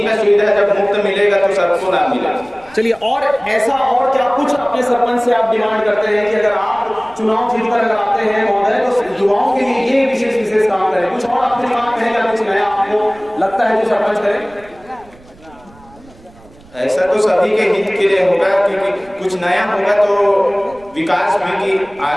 का सुविधा जब मुफ्त मिलेगा तो सबको ना मिलेगा। चलिए और ऐसा और क्या कुछ अपने सरपंच से आप डिमांड करते हैं कि अगर आप चुनाव जीतकर अगर आते हैं महोदय तो युवाओं के लिए ये विशेष काम करें कुछ और आपके दिमाग में है कुछ नया आपको लगता है जो सरपंच करे? ऐसा तो सभी के हित के लिए होगा क्योंकि कुछ नया होगा तो विकास भी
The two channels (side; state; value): right; noise; rumble, 25 dB below the sound